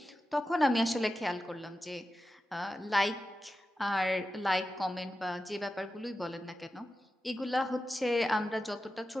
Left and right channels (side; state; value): both; normal; correlation 0.92